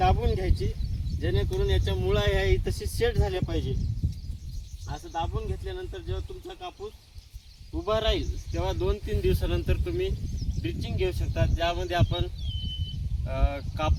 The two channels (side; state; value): both; identical; correlation 1.00